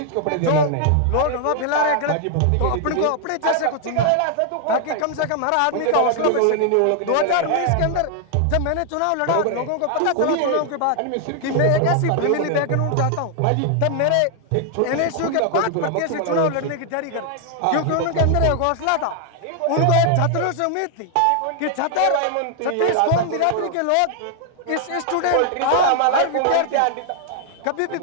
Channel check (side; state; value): both; different; correlation 0.00